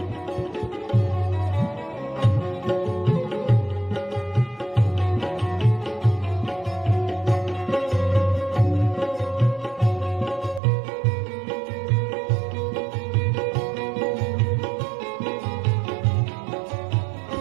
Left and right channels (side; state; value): left; drops out; at 10.6 s